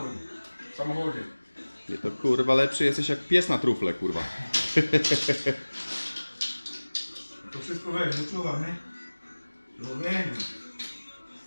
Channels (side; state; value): both; inverted; correlation -1.00